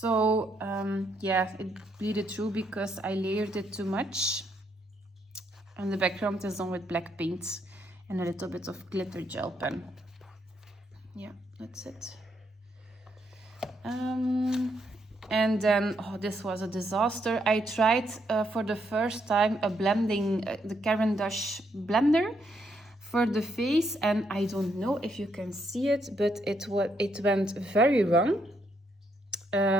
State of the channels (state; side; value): normal; both; correlation 0.75